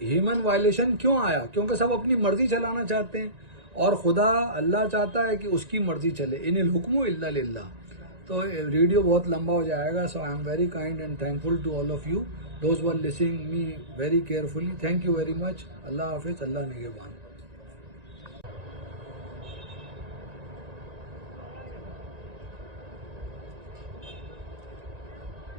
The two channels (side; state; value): left; late; 1.9 ms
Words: ह्यूमन वायलेशन क्यों आया? क्योंकि सब अपनी मर्जी चलाना चाहते हैं, और खुदा अल्लाह चाहता है कि उसकी मर्जी चले। इनिल हुक्मु इल्ला लिल्लाह। तो वीडियो बहुत लंबा हो जाएगा। So I am very kind and thankful to all of you, those were listening me very carefully. Thank you very much. अल्लाह हाफिज, अल्लाह निगहबान।